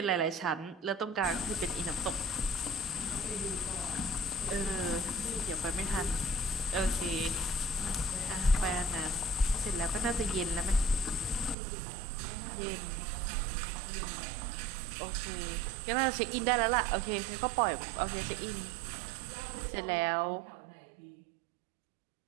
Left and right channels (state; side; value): drops out; left; at 11.6 s